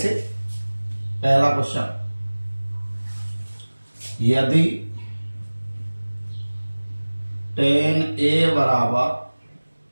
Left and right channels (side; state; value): both; inverted; correlation -1.00